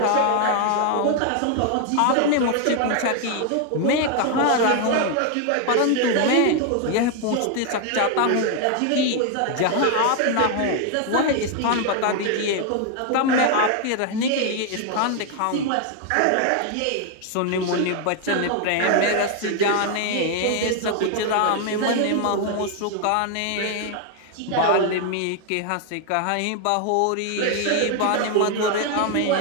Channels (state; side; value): different; both; correlation 0.00